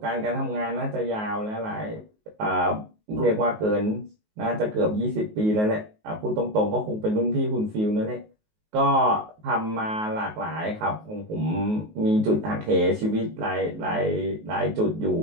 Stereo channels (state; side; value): late; left; 19 ms